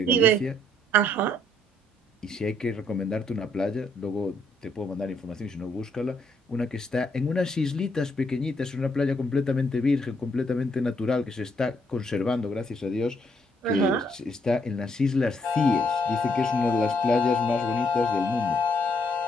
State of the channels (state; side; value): normal; both; correlation 0.72